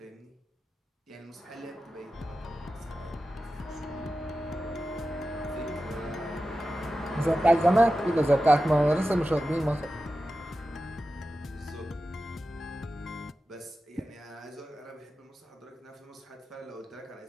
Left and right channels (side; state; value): both; normal; correlation 0.93